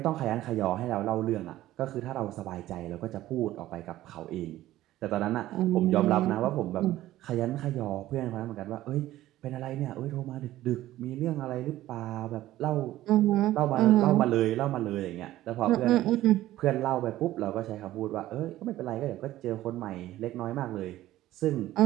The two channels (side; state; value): left; quieter; 14.9 dB